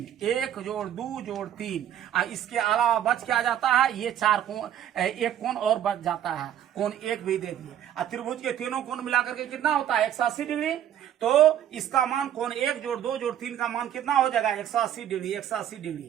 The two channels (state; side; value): quieter; left; 10.6 dB